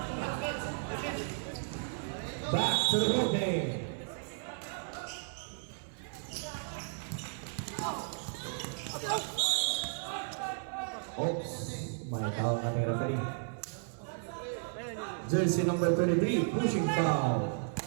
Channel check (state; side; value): silent; left; 55 dB below the other